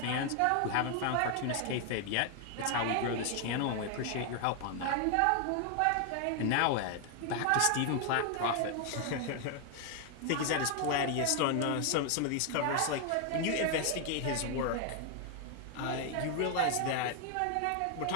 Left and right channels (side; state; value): both; different; correlation 0.00